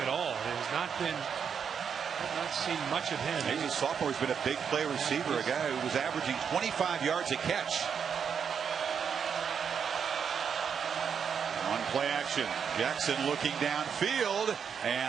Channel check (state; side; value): quieter; left; 7.0 dB